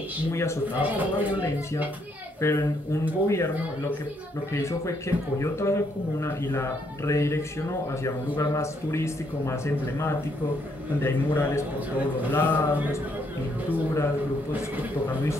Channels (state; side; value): normal; both; correlation 0.72